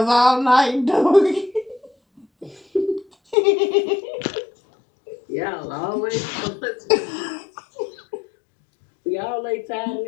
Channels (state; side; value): drops out; right; at 3.4 s